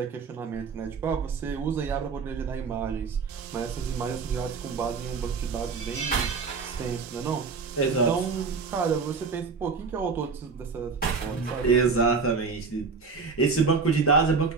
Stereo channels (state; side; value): quieter; left; 5.0 dB